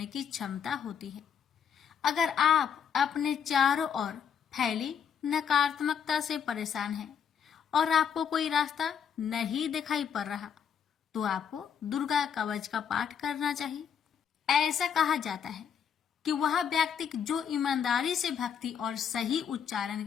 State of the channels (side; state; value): right; quieter; 7.8 dB